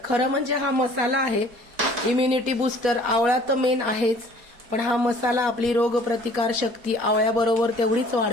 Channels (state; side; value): late; left; 4.2 ms